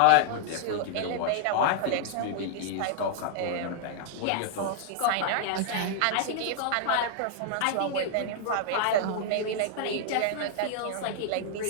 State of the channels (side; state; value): both; different; correlation 0.00